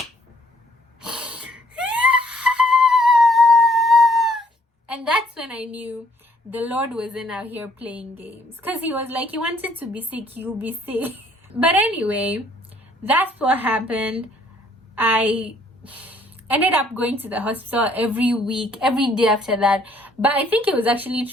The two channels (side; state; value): both; normal; correlation 0.64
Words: and that's when I knew the Lord wasn't out here playing games. Because he was like, you wanted to be sick, you'll be sick. But anyway, that's what happened. I ended up going to the hospital every week, every day after that. But I think it was actually